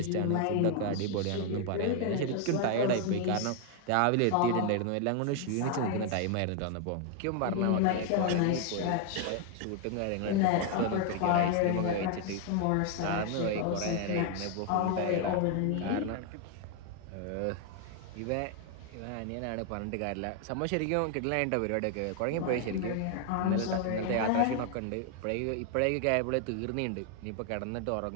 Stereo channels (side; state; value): both; different; correlation 0.00